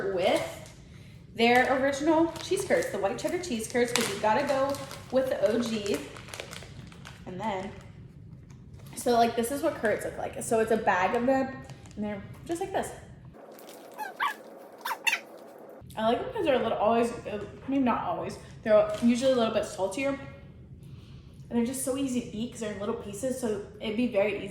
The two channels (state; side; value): identical; both; correlation 1.00